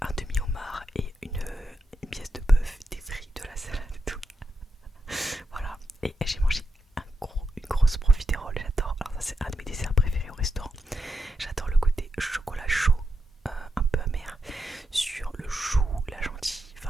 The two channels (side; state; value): both; normal; correlation 0.85